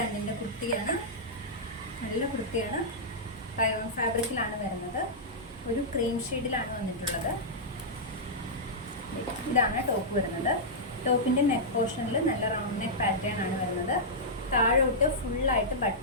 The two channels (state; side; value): normal; both; correlation -0.11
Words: കുർത്തിയാണ്. നല്ല കുർത്തിയാണ്. റയോൺ ഫാബ്രിക്കിലാണ് വരുന്നത്. ഒരു ക്രീം ഷെയ്ഡിലാണ് വന്നിട്ടുള്ളത്. ഇതാണ് ടോപ്പ് വരുന്നത്. ടോപ്പിൻ്റെ നെക്ക് പോർഷനിൽ നല്ല റൗണ്ട് നെക്ക് പാറ്റേൺ ആണ് വരുന്നത്. താഴോട്ട് ഫുള്ളായിട്ട്